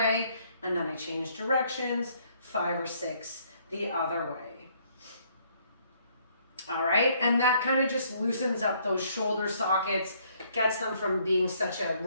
and then I change directions, 5 or 6 the other way. All right, and that kind of just loosens up those shoulder sockets, gets them from being such a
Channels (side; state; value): both; inverted; correlation -0.66